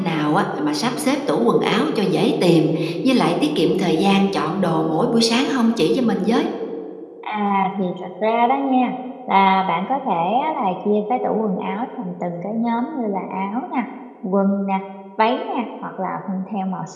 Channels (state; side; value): identical; both; correlation 1.00